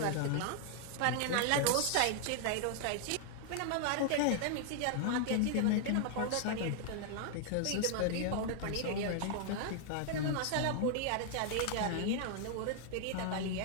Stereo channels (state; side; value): different; both; correlation 0.00